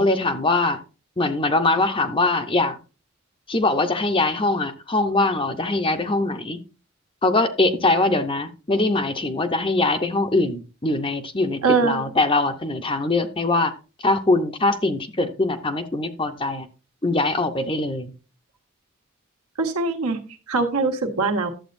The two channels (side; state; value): both; normal; correlation 0.30